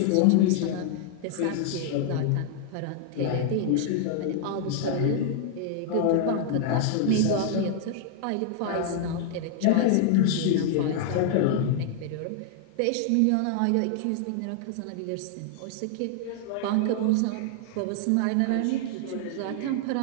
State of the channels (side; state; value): both; different; correlation -0.01